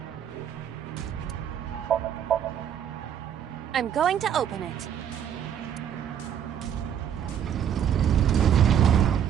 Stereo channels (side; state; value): left; quieter; 9.1 dB